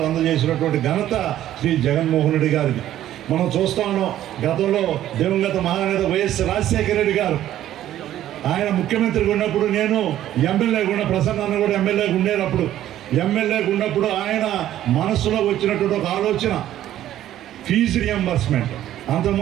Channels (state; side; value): quieter; left; 12.5 dB